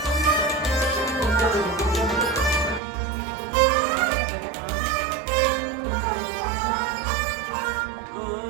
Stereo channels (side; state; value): left; drops out; at 2.8 s